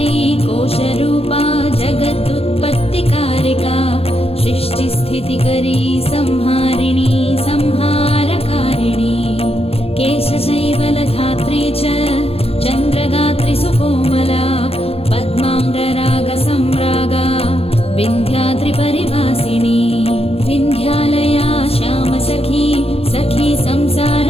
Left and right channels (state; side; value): late; right; 0.29 ms